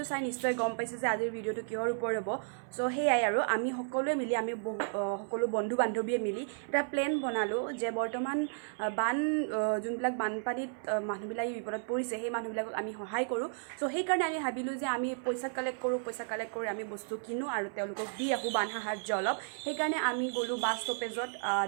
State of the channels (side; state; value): left; silent; 56 dB below the other